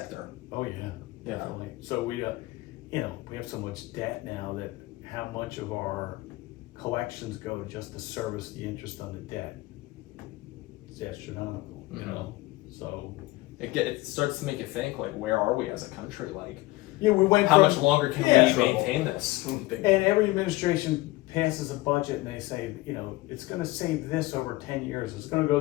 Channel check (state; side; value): quieter; right; 19.9 dB